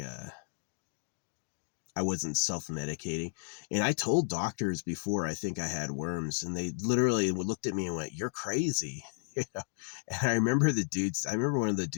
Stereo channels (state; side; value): silent; right; 56 dB below the other